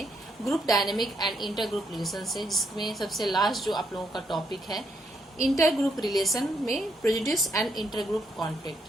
group dynamic and inter group relation से, जिसमें सबसे लास्ट जो आप लोगों का टॉपिक है इंटर ग्रुप रिलेशन में prejudice and inter group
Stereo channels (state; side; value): normal; both; correlation 0.76